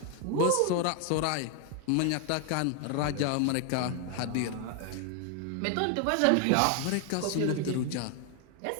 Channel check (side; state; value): both; different; correlation 0.00